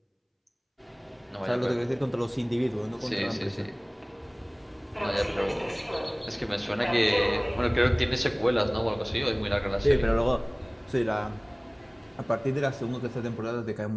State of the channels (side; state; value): both; identical; correlation 1.00